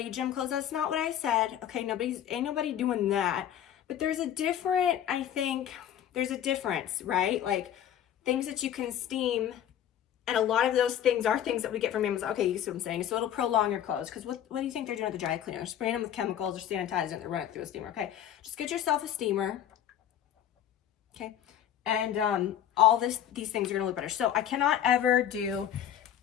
gym clothes. That's not what I said, okay? Ain't nobody doing that. But there's a different, I think, there's a difference, right? Like things that you can steam, and a lot of those things are things that we get from Amazon. Okay, you see what I'm saying? So it'll prolong your clothes. Because what do you think they're doing at the dry cleaner? They're spraying them with chemicals or sanitizing it. They're running it through a steamer. Okay, just get yourself a steamer. Okay, and all these things are gonna look better. So I cannot ever do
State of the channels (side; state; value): right; quieter; 10.5 dB